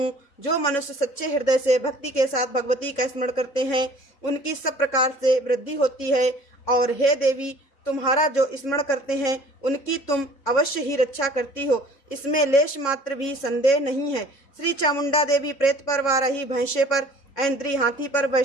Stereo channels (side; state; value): right; late; 3.6 ms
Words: जो मनुष्य सच्चे हृदय से भक्ति के साथ भगवती का स्मरण करते हैं, उनकी सब प्रकार से वृद्धि होती है। और हे देवी, तुम्हारा जो स्मरण करते हैं उनकी तुम अवश्य ही रक्षा करती हो, इसमें लेश मात्र भी संदेह नहीं है। श्री चामुंडा देवी प्रेत पर, वाराही भैंसे पर, ऐन्द्री हाथी पर,